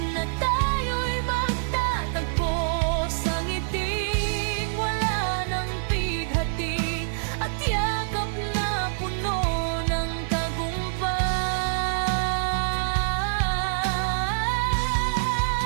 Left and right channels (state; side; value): silent; left; 60 dB below the other